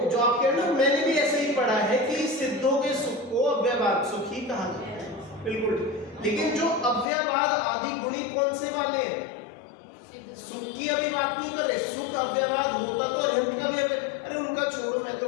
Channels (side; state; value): right; drops out; at 7.1 s